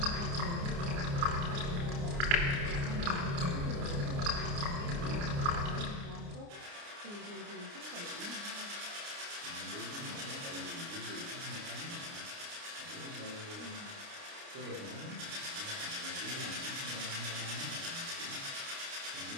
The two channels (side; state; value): left; late; 29 ms